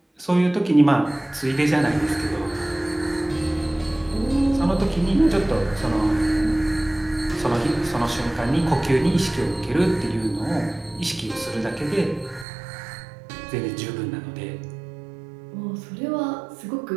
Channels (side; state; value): left; drops out; at 12.5 s